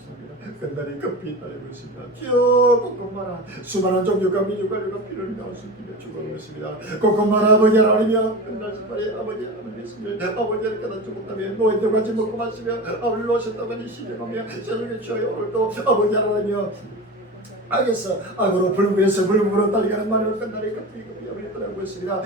끝날이 급히 따르고 있습니다. 주여 꼼꼼마라 수많은 종교가 민족과 피를 나오시기를 축원하고 있습니다. 꼼꼼마라 아버지 하나님이여 끝날 시발에 아버지 하나님 있으면 아버지를 깨닫지 못하면 노인들 같이 먹고 마시며 아버지 놓으셨다고 시정하며 세상에 주여 오늘도 아버지 하나님이여 알겠어. 악으로 불구해서 불구로 달리가는 말을 끝날이 급히 아버지 떠나고 있습니다.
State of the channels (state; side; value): normal; both; correlation 0.28